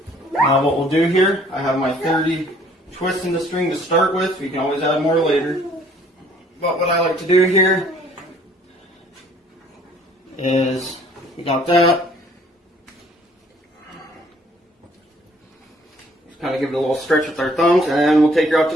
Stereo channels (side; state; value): both; normal; correlation 0.59